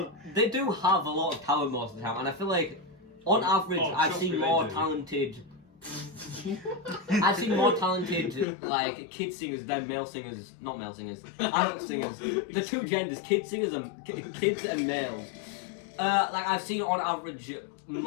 they do have a lot of talent most of the time, and I feel like on average I've seen more talented. I've seen more talented like kid singers than male singers, not male singers, adult singers. The two genders, kid singers and kids and males. Like I've seen on average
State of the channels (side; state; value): right; drops out; at 8.5 s